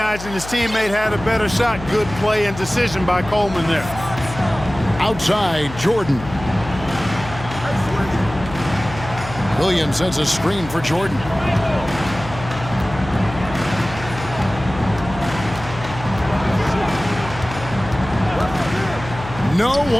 his teammate had a better shot. Good play and decision by Coleman there. Outside, Jordan. Williams sends a screen for Jordan. No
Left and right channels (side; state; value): left; noise; hum, 12 dB below the sound